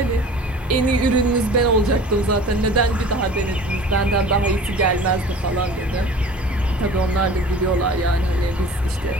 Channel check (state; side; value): normal; both; correlation 0.43